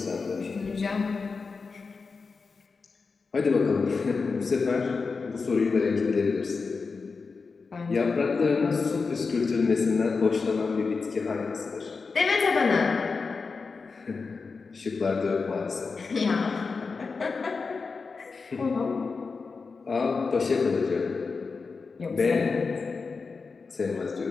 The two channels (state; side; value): quieter; right; 4.6 dB